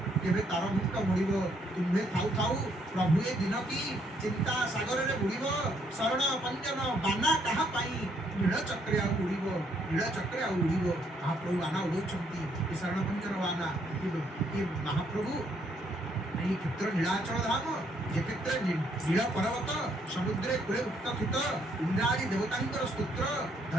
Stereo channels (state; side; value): normal; both; correlation 0.70